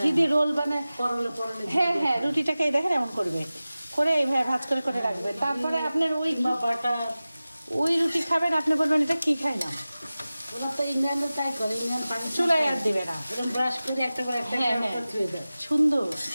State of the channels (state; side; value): inverted; both; correlation -0.97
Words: দিয়ে রোল বানায়। পরলে পরলে হ্যাঁ হ্যাঁ, রুটিটাকে এই দেখেন এমন করবে, করে এইভাবে ভাজ করে করে রাখবে। তারপরে আপনার বা বাটার। ওই রুটি খাবেন, আপনি বলবেন এটা কি খাই না। ওরা তো ইন্ডিয়ানও তাই করে, ইন্ডিয়ান পানি চুলায় আর দিবে না, এরকম ব্রাশ করে একটা করে একটা হ্যাঁ, করে হ্যাঁ। ধুয়ে দেয়। সুন্দর।